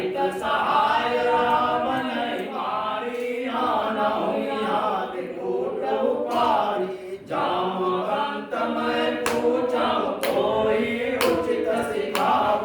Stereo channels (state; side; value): identical; both; correlation 1.00